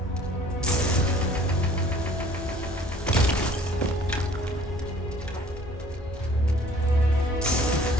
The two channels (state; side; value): normal; both; correlation 0.53